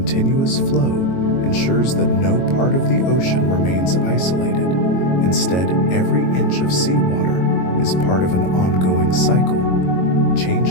flow ensures that no part of the ocean remains isolated. Instead, every inch of seawater is part of an ongoing cycle.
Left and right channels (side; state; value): right; late; 22 ms